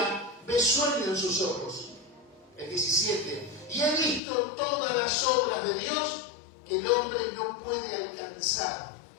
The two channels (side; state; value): right; drops out; at 4.2 s